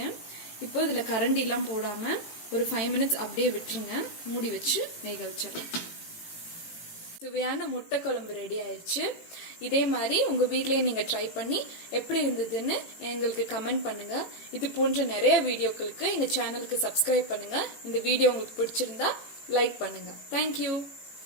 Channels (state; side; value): late; right; 18 ms